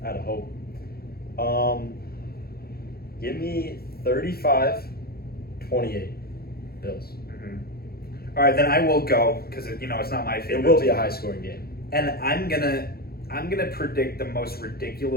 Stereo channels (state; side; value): late; right; 0.45 ms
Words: out of hope. Give me 35-28 Bills. All right, then I will go because it's not my favorite. It will be a high-scoring game, and I'm gonna predict the most